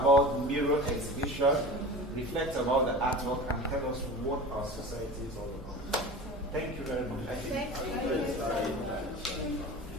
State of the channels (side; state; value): both; normal; correlation 0.34